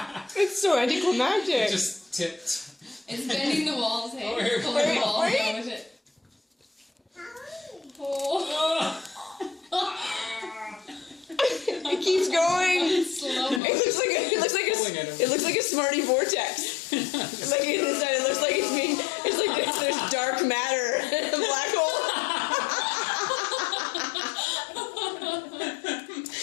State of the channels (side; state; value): right; drops out; at 13.6 s